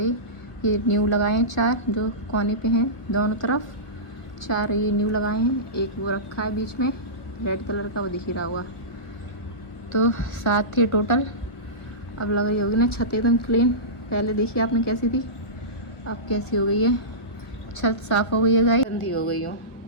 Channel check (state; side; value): late; right; 1.2 ms